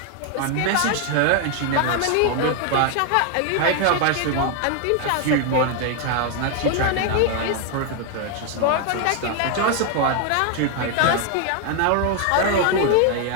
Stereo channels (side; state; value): both; different; correlation 0.00